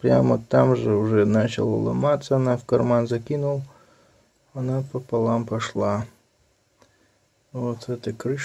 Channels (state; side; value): identical; both; correlation 1.00